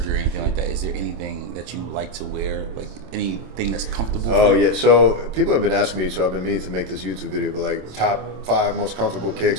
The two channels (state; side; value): late; left; 27 ms